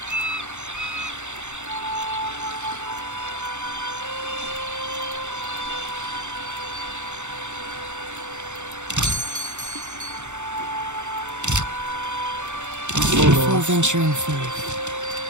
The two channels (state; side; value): late; left; 0.84 ms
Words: Before venturing forth.